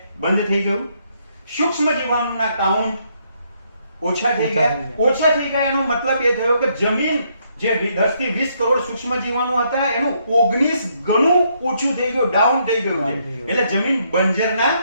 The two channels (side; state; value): both; inverted; correlation -0.73